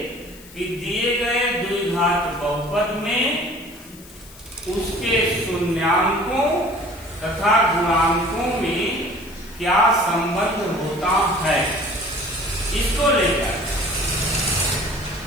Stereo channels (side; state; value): left; noise; hiss, 21 dB below the sound